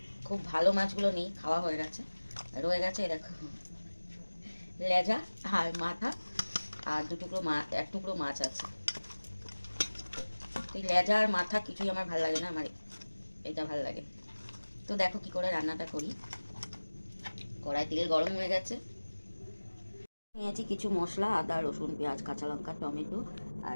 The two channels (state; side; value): inverted; both; correlation -1.00